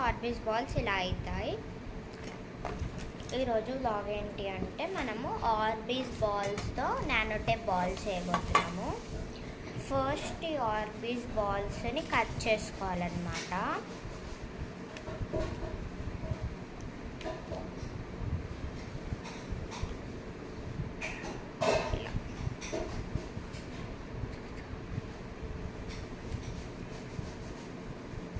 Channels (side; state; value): both; identical; correlation 1.00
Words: ఆర్బీస్ బాల్స్ ఇలా అవుతాయి. ఈరోజు బ్లాగ్ ఏంటి అంటే మనము ఆర్బీస్ బాల్స్తో నానో టేప్ బాల్స్ చేయబోతున్నాము. ఫస్ట్ ఈ ఆర్బీస్ బాల్స్ని కట్ చేసుకోవాలన్నమాట.